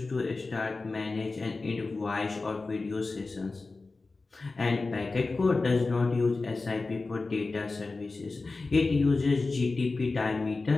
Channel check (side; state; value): right; quieter; 3.7 dB